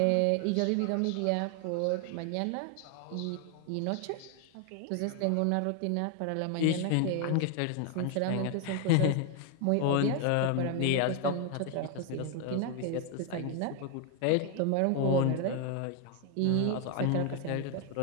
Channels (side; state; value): both; different; correlation 0.00